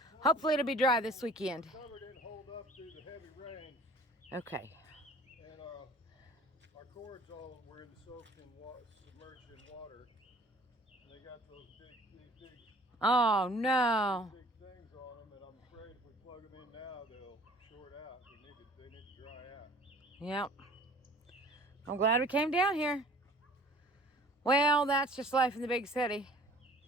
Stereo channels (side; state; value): both; normal; correlation 0.50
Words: Hopefully it'll be dry this weekend. The cover didn't hold up through the heavy rain. Okay. And our cords all were soaked in water, submerged in water. And they got those big Oh no. things on them, and I'm afraid if we plug them in now, they'll short out. They need to dry out. Yep. I'm glad we came down here. Well, that's just life in the big city.